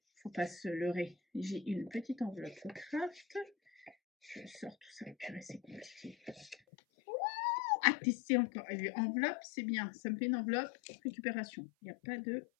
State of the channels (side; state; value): right; drops out; at 6.6 s